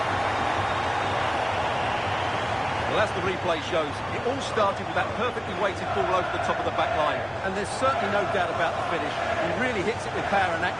Well, as the replay shows, it all started with that perfectly weighted ball over the top of the back line. And there's certainly no doubt about the finish. He really hits it with power and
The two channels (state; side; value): identical; both; correlation 1.00